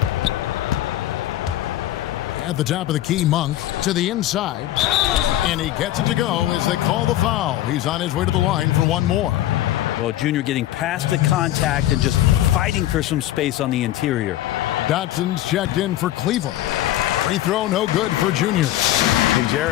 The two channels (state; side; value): quieter; right; 14.0 dB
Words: At the top of the key, Monk to the inside. And he gets it to go as they call the foul. He's on his way to the line for one more. Well, Junior getting past the contact and just fighting for some space on the interior. Dotson's checked in for Cleveland. Free throw no good for Junior. And